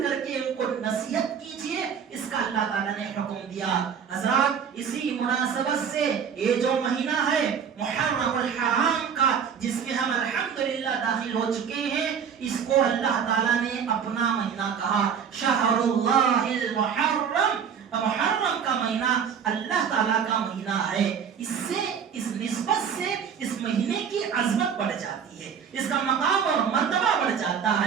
کر کے ان کو نصیحت کیجئے، اس کا اللہ تعالیٰ نے حکم دیا۔ حضرات اسی مناسبت سے یہ جو مہینہ ہے محرم الحرام کا، جس میں ہم الحمدللہ داخل ہو چکے ہیں، اس کو اللہ تعالیٰ نے اپنا مہینہ کہا، شہر اللہ المحرم، محرم کا مہینہ اللہ تعالیٰ کا مہینہ ہے۔ اس سے، اس نسبت سے اس مہینے کی عظمت بڑھ جاتی ہے، اس کا مقام اور مرتبہ بڑھ جاتا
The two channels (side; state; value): left; quieter; 7.3 dB